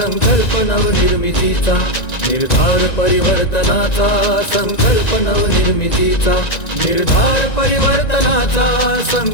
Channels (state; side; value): late; right; 1.9 ms